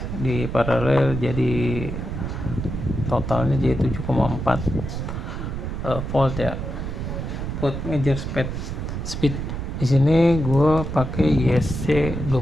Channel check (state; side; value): noise; right; rumble, 5 dB below the sound